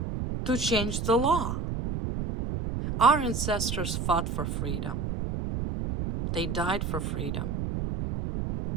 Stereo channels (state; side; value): noise; right; rumble, 2 dB below the sound